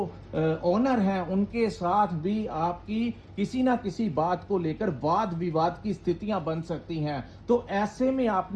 ओनर हैं उनके साथ भी आपकी किसी ना किसी बात को लेकर वाद विवाद की स्थितियां बन सकती हैं। तो ऐसे में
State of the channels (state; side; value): identical; both; correlation 1.00